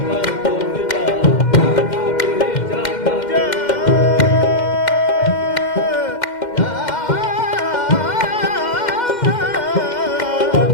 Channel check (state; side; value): late; right; 2.1 ms